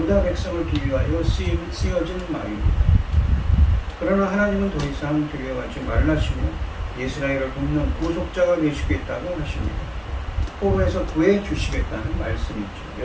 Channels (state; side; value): identical; both; correlation 1.00